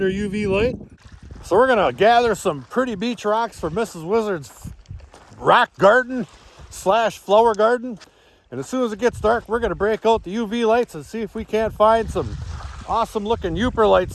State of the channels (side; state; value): both; identical; correlation 1.00